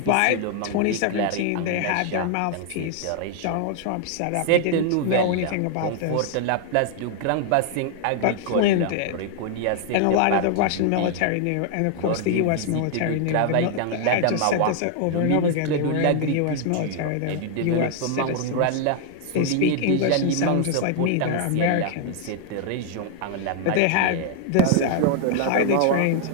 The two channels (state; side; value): different; both; correlation 0.00